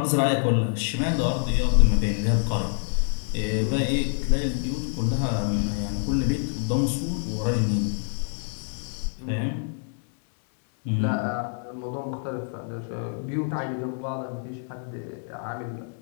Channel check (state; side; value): silent; right; digital silence